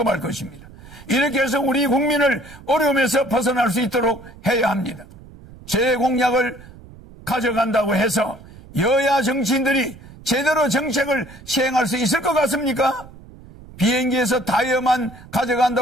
것입니다. 이렇게 해서 우리 국민을 어려움에서 벗어날 수 있도록 해야 합니다. 제 공약을 가져간다고 해서 여야 정치인들이 제대로 정책을 시행할 수 있을 것 같습니까? 비행기에서 타이어만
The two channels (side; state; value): right; noise; rumble, 20 dB below the sound